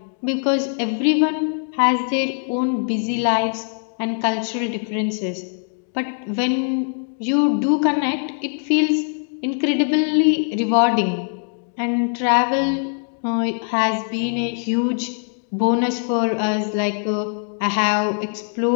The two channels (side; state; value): right; silent; 57 dB below the other